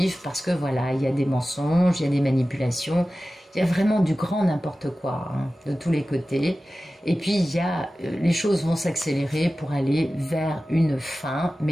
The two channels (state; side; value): normal; both; correlation 0.95